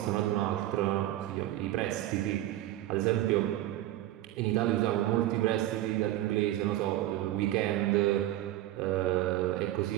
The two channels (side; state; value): left; quieter; 14.5 dB